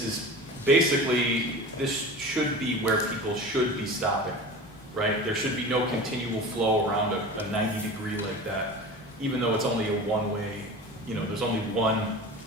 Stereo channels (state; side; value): normal; both; correlation 0.34